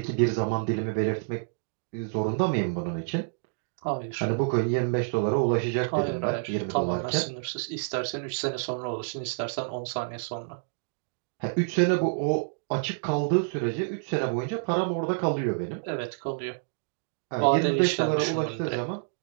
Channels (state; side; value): silent; left; digital silence